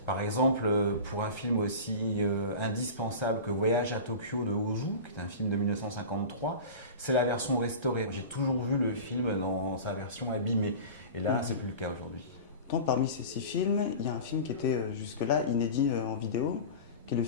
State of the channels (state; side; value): inverted; both; correlation -0.33